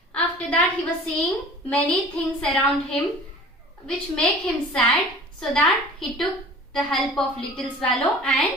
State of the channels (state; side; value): normal; both; correlation 0.44